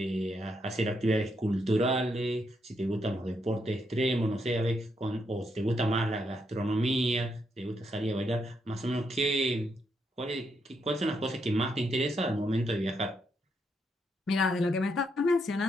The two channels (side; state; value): both; normal; correlation 0.78